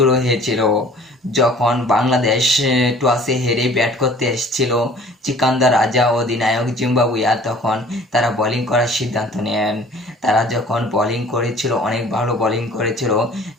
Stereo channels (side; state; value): both; normal; correlation 0.50